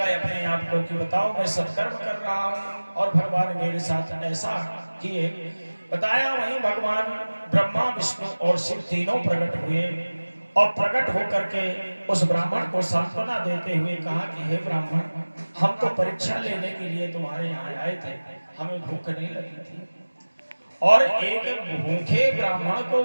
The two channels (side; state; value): both; inverted; correlation -1.00